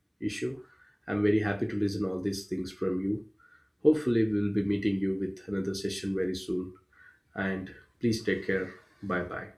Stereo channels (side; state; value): both; identical; correlation 1.00